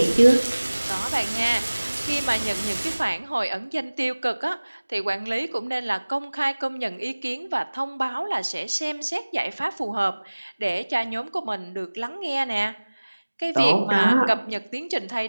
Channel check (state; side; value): inverted; both; correlation -1.00